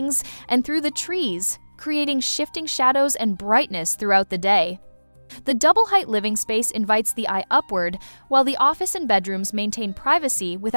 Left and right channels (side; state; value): both; inverted; correlation -1.00